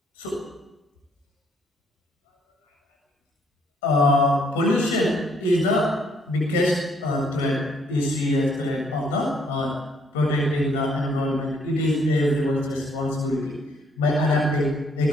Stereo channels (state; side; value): normal; both; correlation 0.67